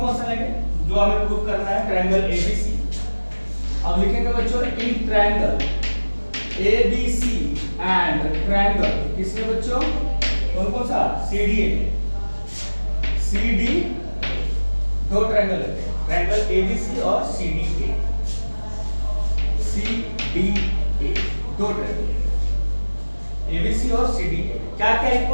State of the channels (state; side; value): inverted; both; correlation -1.00